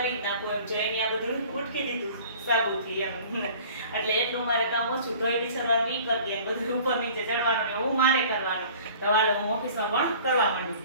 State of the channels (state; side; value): inverted; both; correlation -0.47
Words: નાખું એમ, જો એને આ બધું ઉટકી દીધું સાબુથી એમ, એટલે એટલું મારે કામ ઓછું, ધોઈ વિચારવાનું એ કરી દે, બધું ઉપર નીચે ચડવાનું ને એવું મારે કરવાનું, તો હાલો હું ઓફિસમાં પણ કરવા